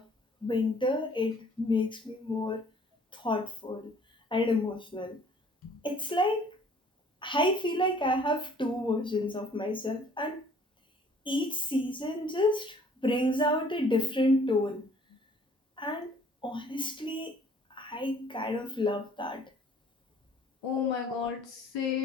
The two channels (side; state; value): both; normal; correlation 0.56